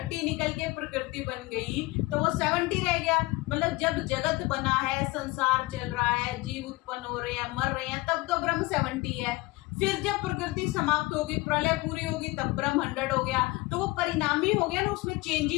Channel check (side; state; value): right; quieter; 21.9 dB